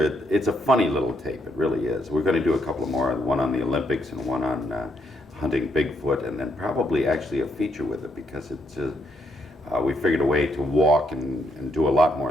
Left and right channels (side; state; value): both; normal; correlation 0.75